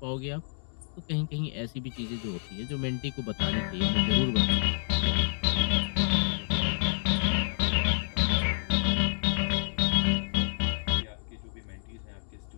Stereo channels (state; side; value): silent; right; digital silence